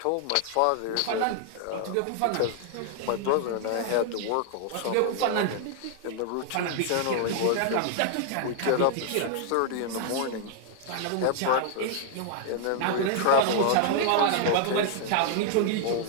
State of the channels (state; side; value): different; both; correlation 0.00